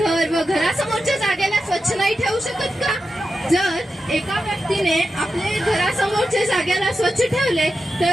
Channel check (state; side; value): normal; both; correlation 0.90